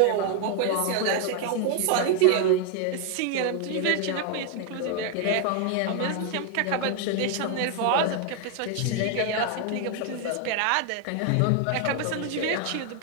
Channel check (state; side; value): different; both; correlation 0.01